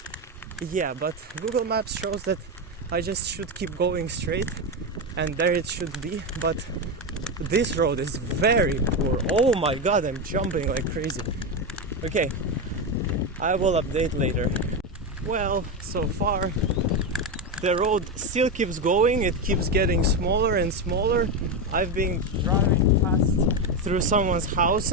Yeah, but Google Maps shows that I just should keep going straight, and there it should be, but this road is very poor. Oh my god, I'm jumping like crazy. Okay, I will update later. Well, so far the road still keeps going, it keeps getting smaller and smaller. I've been driving past through someone's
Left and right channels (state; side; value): normal; both; correlation 0.12